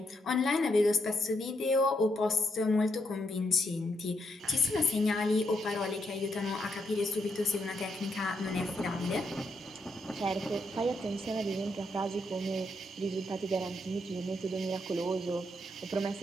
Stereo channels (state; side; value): normal; both; correlation 0.78